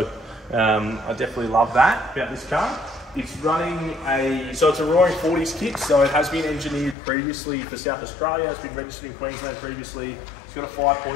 I definitely love that about this car. It's running so it's a Roaring 40s kit, so it has been engineered previously for South Australia. It's been registered in Queensland previously. It's got a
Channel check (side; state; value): right; drops out; at 7.0 s